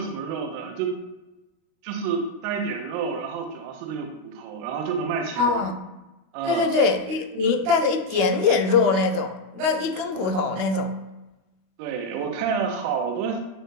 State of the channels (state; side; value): late; left; 38 ms